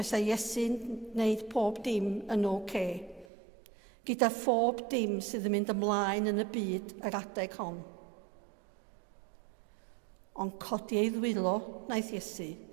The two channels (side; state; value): left; drops out; at 3.2 s